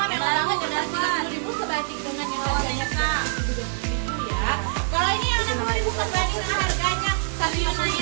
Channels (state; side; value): silent; left; digital silence